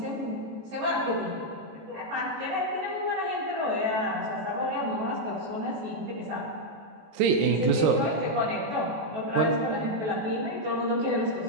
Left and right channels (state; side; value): late; left; 19 ms